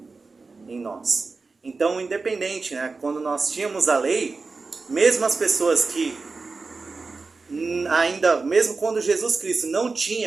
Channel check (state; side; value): quieter; left; 4.1 dB